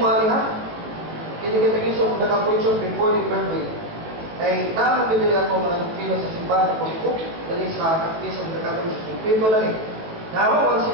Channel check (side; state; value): left; late; 18 ms